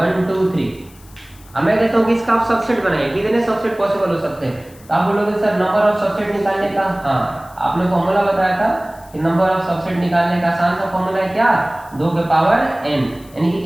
2 3। अब मैं कहता हूँ कि इसका आप सबसेट बनाइए, कितने सबसेट पॉसिबल हो सकते हैं? तो आप बोलोगे सर नंबर ऑफ सबसेट निकालने का, हाँ आपने फॉर्मूला बताया था कि नंबर ऑफ सबसेट निकालने का आसान सा फॉर्मूला है क्या, 2 के पावर n, यानी कि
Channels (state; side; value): noise; left; hiss, 25 dB below the sound